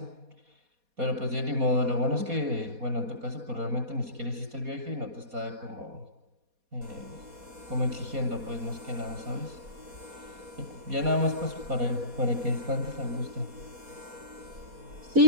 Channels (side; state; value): left; late; 4.2 ms